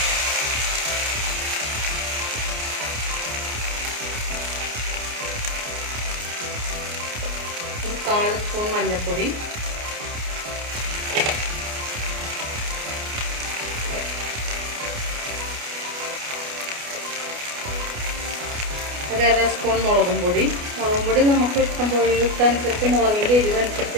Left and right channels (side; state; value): left; late; 29 ms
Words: 1/4 സ്പൂൺ മഞ്ഞൾപ്പൊടി, 1/2 സ്പൂൺ മുളകും പൊടി. മുളകും പൊടി നമുക്ക് ഇഷ്ടമനുസരിച്ച് മുളകിൻ്റെ